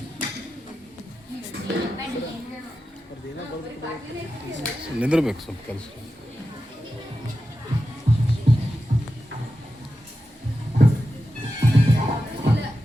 ನಿಂದಿರ್ಬೇಕು ಸ್ವಲ್ಪ ಕೆಲಸ.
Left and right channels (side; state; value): both; normal; correlation 0.91